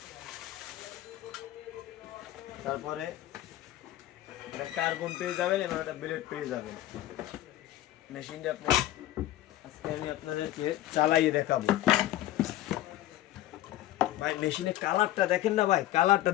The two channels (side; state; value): right; quieter; 14.5 dB